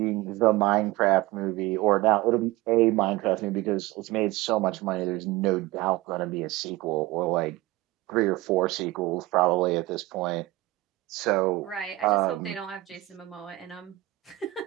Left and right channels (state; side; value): quieter; left; 18.6 dB